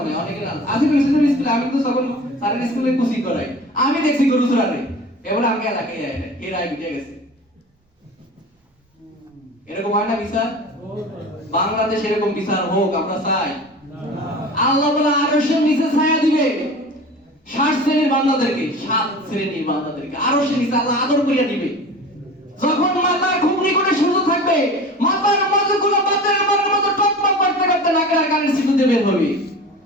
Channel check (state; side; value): normal; both; correlation 0.37